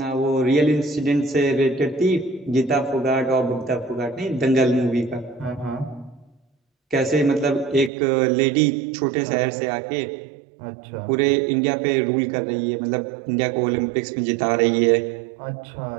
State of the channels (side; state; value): left; drops out; at 7.9 s